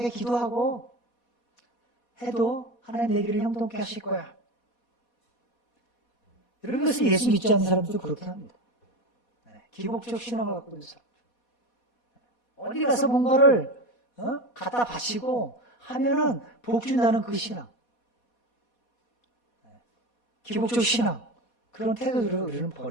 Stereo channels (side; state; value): right; late; 4.2 ms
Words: 기도하고 해도 하나님 내 길을 형통케 하실 거야. 여러분, 그래서 예수 믿지 않는 사람들도 그렇게 합니다. 기복적 신앙을 갖고 있는 사람. 어디 가서 뭔가를 갖다 바치고 하면은 복 준다는 그 신앙. 기복적 신앙. 그런 태도들을 우리는